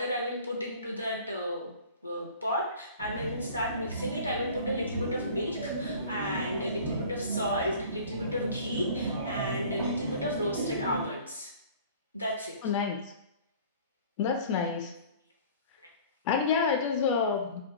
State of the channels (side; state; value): both; inverted; correlation -0.46